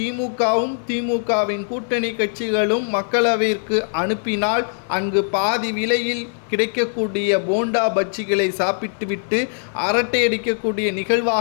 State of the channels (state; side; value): silent; right; 58 dB below the other